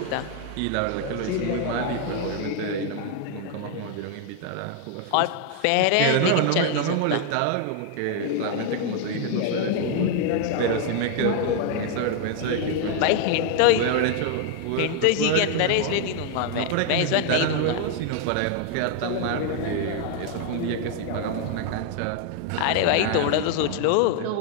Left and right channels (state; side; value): different; both; correlation 0.00